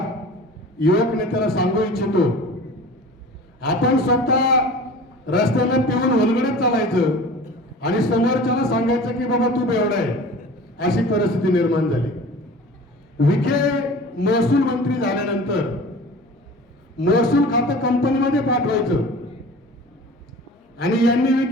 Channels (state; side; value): normal; both; correlation 0.40